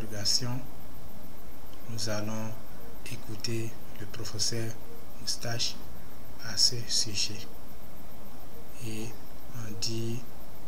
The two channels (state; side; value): identical; both; correlation 1.00